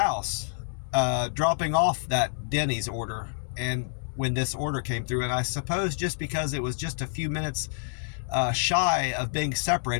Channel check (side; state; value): right; silent; 58 dB below the other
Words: dropping off that Denny's order, and when this order came through, and I suppose just because it was just a few minutes shy of being